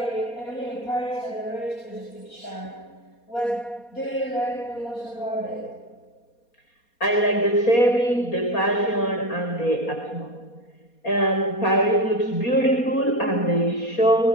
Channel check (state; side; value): late; right; 4.2 ms